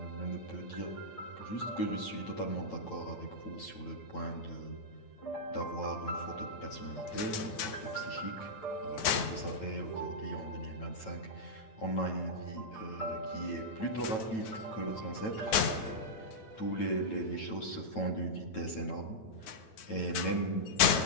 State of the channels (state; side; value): late; right; 9.8 ms